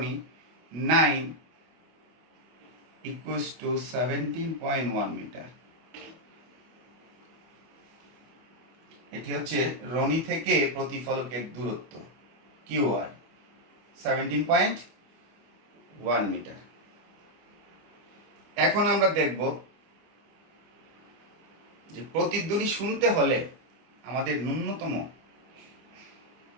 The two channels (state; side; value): late; left; 25 ms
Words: 9 ইকুয়ালস টু 17.1 মিটার। এটি হচ্ছে রনি থেকে প্রতিফলকের দূরত্ব কিউ আর 17.1 মিটার। এখন আমরা দেখব যে প্রতিধ্বনি শুনতে হলে আমাদের ন্যূনতম